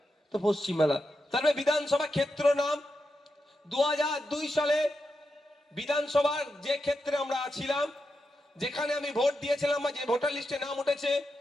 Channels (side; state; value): both; normal; correlation 0.87